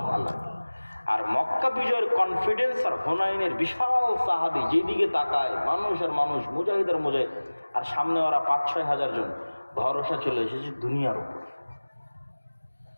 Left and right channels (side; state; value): both; inverted; correlation -1.00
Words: আল্লাহ। আর মক্কা বিজয়ের কনফিডেন্স আর হুনাইনের বিশাল সাহাবী, যেদিকে তাকায় মানুষ আর মানুষ, মুজাহিদ আর মুজাহিদ, আর সামনে ওরা 5-6 হাজার জন, ভরসা চলে এসেছে দুনিয়ার উপর।